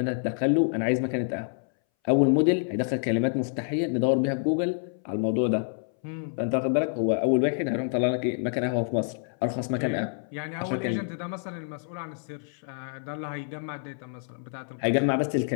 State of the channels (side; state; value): right; silent; 60 dB below the other